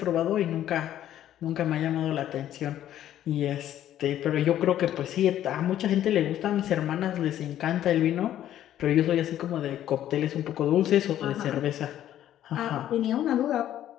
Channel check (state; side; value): quieter; right; 11.8 dB